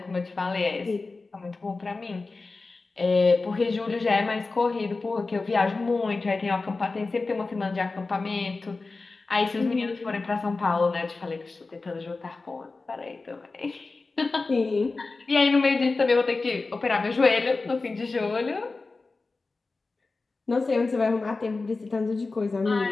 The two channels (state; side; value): quieter; right; 3.7 dB